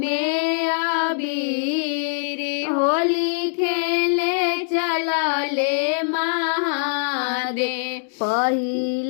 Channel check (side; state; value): right; silent; 63 dB below the other